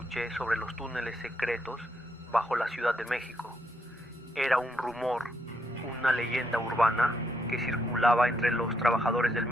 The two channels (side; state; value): both; normal; correlation 0.77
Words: sobre los túneles secretos bajo la Ciudad de México. Era un rumor, una leyenda urbana que circulaba entre los trabajadores del